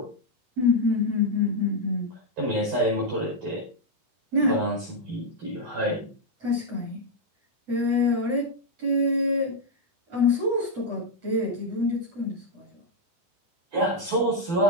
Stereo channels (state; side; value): late; left; 12 ms